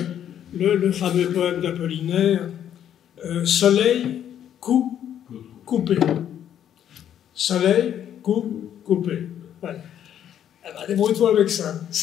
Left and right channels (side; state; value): right; quieter; 10.0 dB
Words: le fameux poème d'Apollinaire, Soleil, coup, coupé. Soleil, coup, coupé. Voilà. Eh ben, débrouille-toi avec ça.